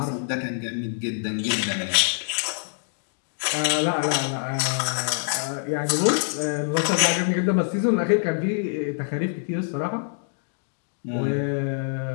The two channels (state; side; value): silent; right; digital silence